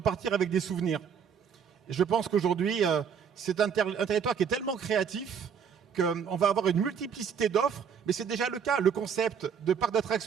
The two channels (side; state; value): left; quieter; 7.2 dB